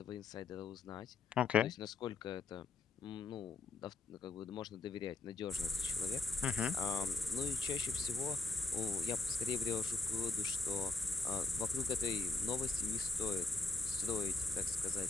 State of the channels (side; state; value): right; quieter; 4.0 dB